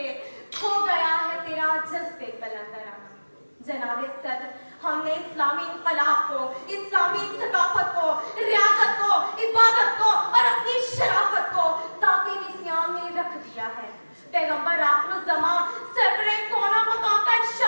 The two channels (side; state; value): both; inverted; correlation -1.00